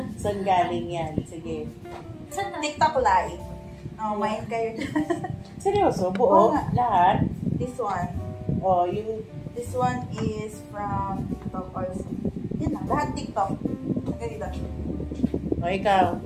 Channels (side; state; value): both; identical; correlation 1.00